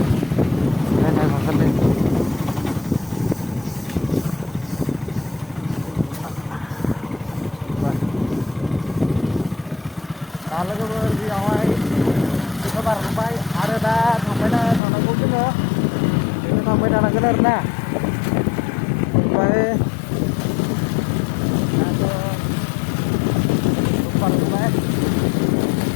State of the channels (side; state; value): right; drops out; at 14.8 s